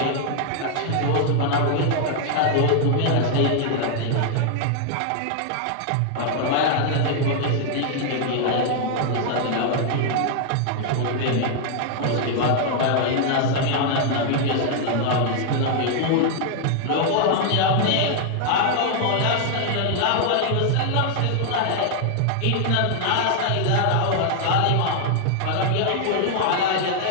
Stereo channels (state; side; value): different; both; correlation 0.00